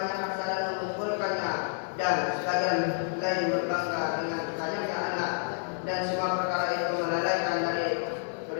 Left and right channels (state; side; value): silent; right; digital silence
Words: harta dan mengumpulkannya, dan sebagian lain berbangga dengan banyaknya anak, dan semua perkara itu melalaikan dari